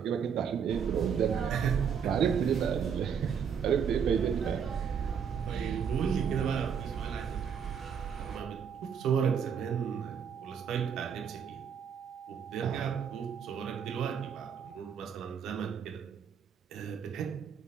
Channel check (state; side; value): quieter; left; 7.3 dB